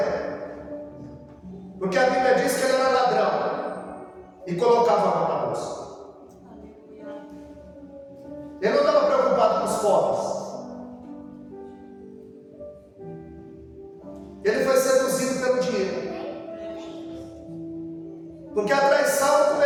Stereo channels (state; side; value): identical; both; correlation 1.00